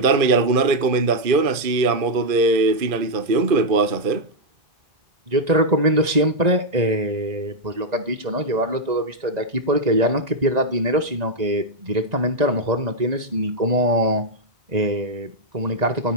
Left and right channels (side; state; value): left; late; 1.9 ms